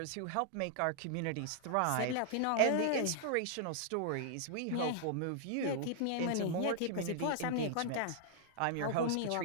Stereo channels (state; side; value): different; both; correlation -0.01